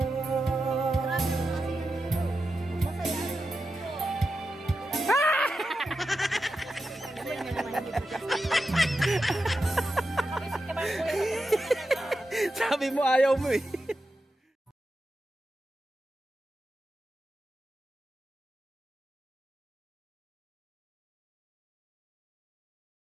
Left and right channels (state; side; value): normal; both; correlation 0.90